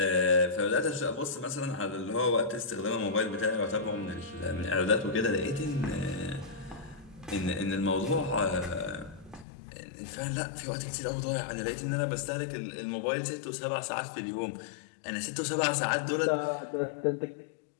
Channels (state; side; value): drops out; right; at 9.5 s